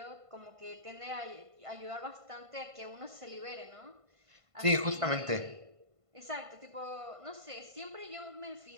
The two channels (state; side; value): late; left; 1.5 ms